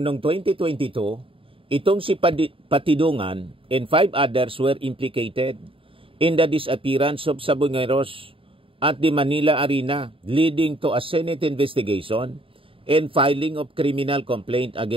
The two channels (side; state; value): left; late; 0.26 ms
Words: noong 2022, itong si Patidungan and 5 others were implicated in the disappearance of Sabongeros at the Manila Arena, leading to a Senate investigation and filing of criminal complaint